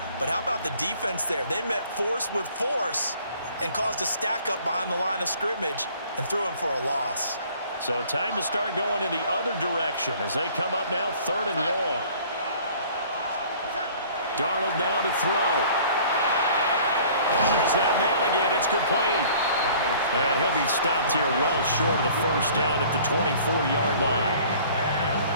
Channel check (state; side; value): inverted; both; correlation -0.52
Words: But how about the defense there? They met force with force and caused a stack up behind the line of scrimmage and threw him for a loss. So time to start going in the other direction as they come up now 3rd and long. Darnold now to throw. There's that man again. It's complete. And he'll be stopped here well short of the 1st down at the 24-yard line.